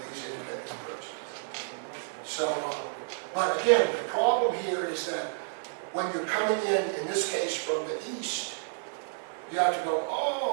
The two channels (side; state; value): left; silent; digital silence